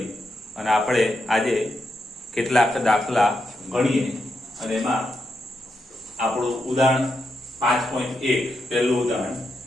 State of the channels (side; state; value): both; normal; correlation 0.84